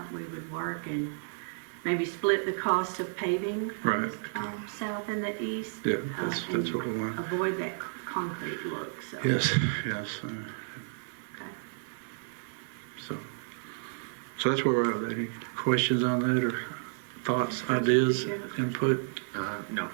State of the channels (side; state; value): left; silent; digital silence